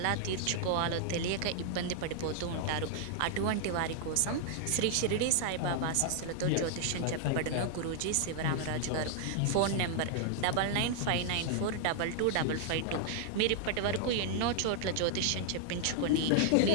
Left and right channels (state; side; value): different; both; correlation -0.01